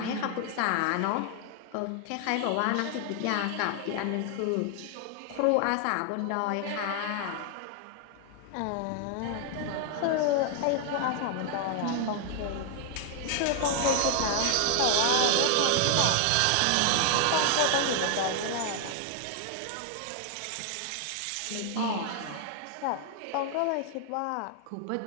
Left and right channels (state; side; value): different; both; correlation 0.00